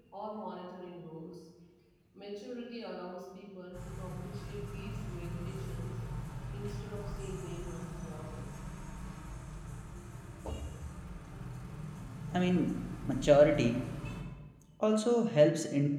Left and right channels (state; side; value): identical; both; correlation 1.00